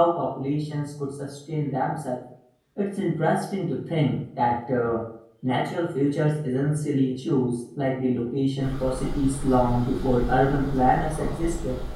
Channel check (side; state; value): both; identical; correlation 1.00